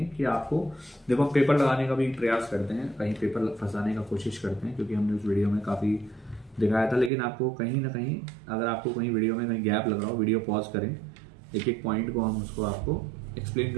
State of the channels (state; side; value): drops out; left; at 7.1 s